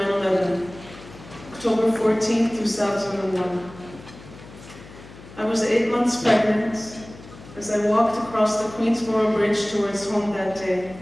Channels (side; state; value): left; noise; hum, 18 dB below the sound